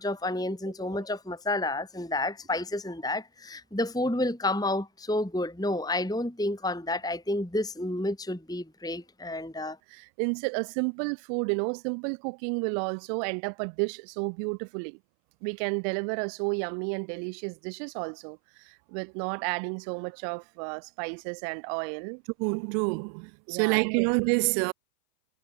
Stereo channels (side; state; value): left; drops out; at 9.8 s